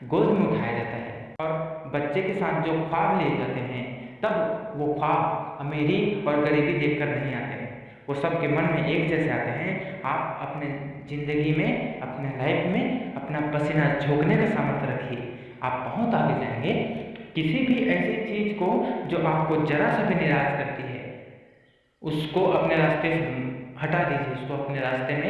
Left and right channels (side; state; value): both; identical; correlation 1.00